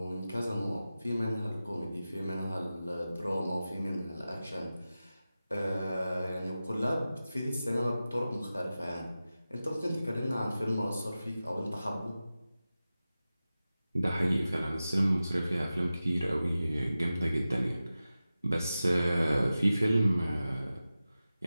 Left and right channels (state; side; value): inverted; both; correlation -0.94